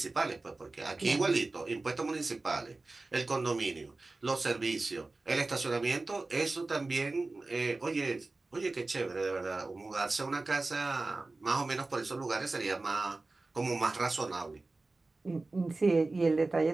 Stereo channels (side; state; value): left; quieter; 3.3 dB